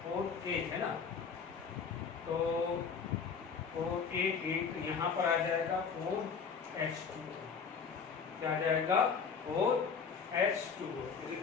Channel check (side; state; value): right; quieter; 6.0 dB